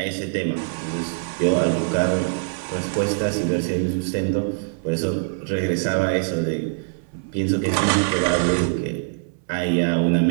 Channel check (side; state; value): left; silent; 60 dB below the other